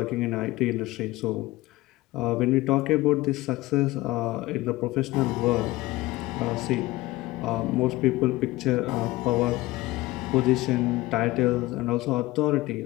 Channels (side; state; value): right; quieter; 19.0 dB